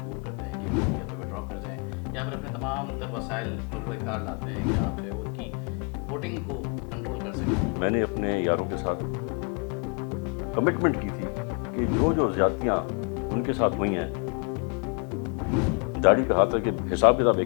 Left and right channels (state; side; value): quieter; right; 36.1 dB